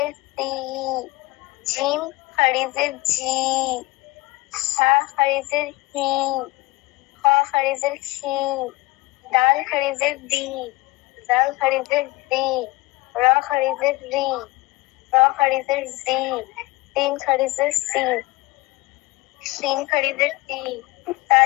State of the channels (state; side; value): quieter; right; 21.4 dB